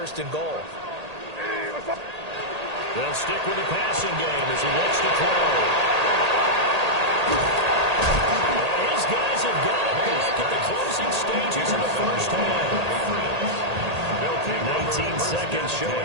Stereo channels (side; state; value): left; late; 1.8 ms